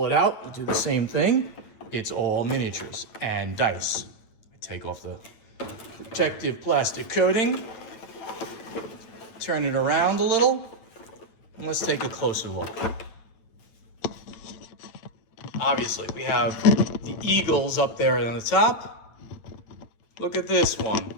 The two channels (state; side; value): late; right; 9.0 ms